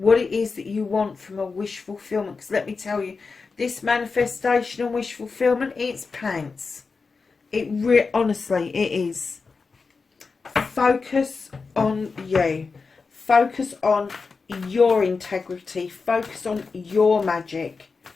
it is that you want from a wish fulfillment. Because let me tell you, this manifestation and wish fulfillment, it's pants. Honestly, it is. Focus on you. Focus on your integrity. Focus on your magic.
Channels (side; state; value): right; quieter; 4.6 dB